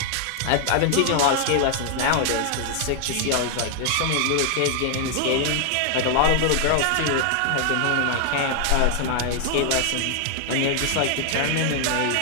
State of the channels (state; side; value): different; both; correlation 0.00